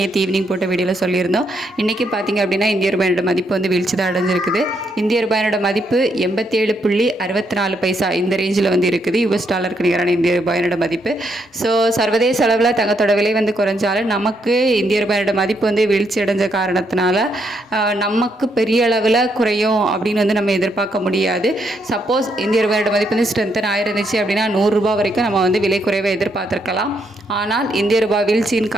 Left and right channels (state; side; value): normal; both; correlation 0.76